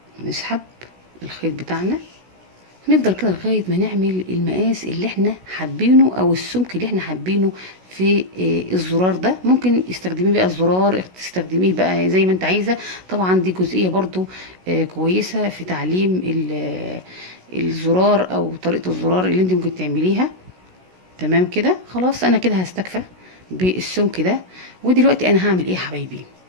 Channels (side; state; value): left; late; 16 ms